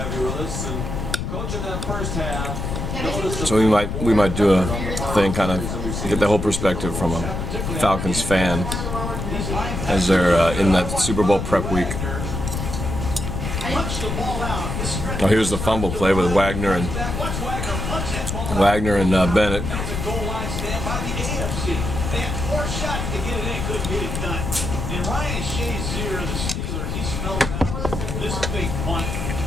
So we might do a thing, kind of get the whole perspective from a Falcons fan as they're in that Super Bowl prep week. Oh, here's the fumble play with Wagner and Bennett.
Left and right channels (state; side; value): noise; left; rumble, 3 dB below the sound